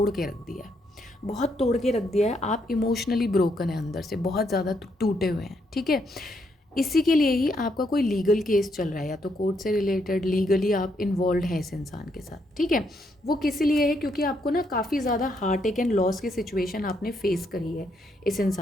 के रख दिया है, बहुत तोड़ के रख दिया है। आप इमोशनली ब्रोकन है, अंदर से बहुत ज़्यादा टूटे हुए हैं। ठीक है, इसी के लिए ही आपका कोई लीगल केस चल रहा है, या तो कोर्ट से रिलेटेड लीगली आप इन्वॉल्व हैं इस इंसान के साथ। ठीक है, वो किस लिए है? क्योंकि आपको ना काफ़ी ज़्यादा हार्ट अटैक एंड लॉस की सिचुएशन आपने फेस करी है इस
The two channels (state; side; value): normal; both; correlation 0.76